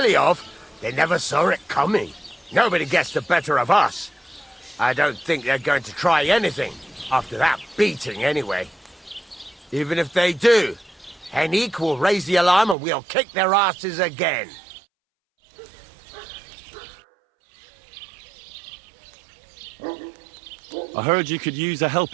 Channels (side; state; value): left; drops out; at 12.8 s